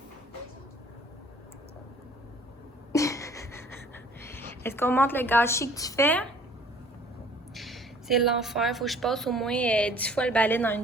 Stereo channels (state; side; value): normal; both; correlation 0.54